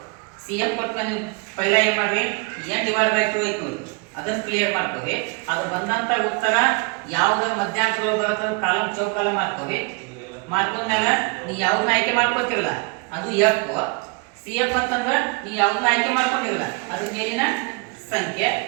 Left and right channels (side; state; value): left; quieter; 32.0 dB